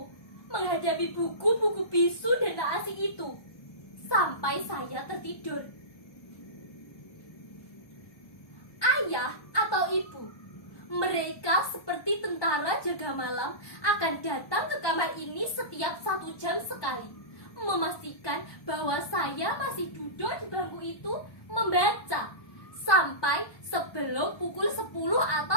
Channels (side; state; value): right; late; 1.2 ms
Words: menghadapi buku-buku bisu dan tak asing itu, sampai saya tertidur. Ayah atau ibu, mereka seperti tentara jaga malam, akan datang ke kamar ini setiap 1 jam sekali, memastikan bahwa saya masih duduk di bangku itu membaca sampai sebelum pukul 10